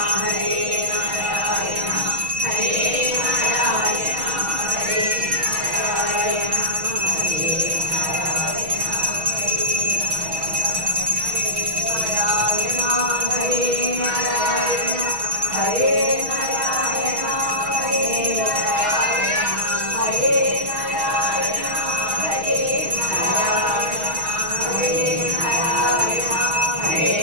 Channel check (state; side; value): late; left; 6.3 ms